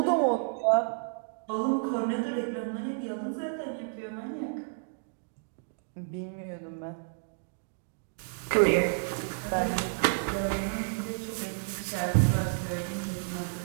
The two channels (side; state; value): left; silent; digital silence